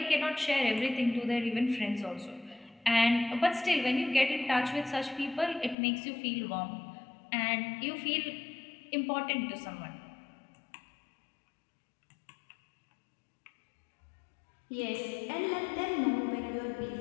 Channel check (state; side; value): drops out; right; at 5.8 s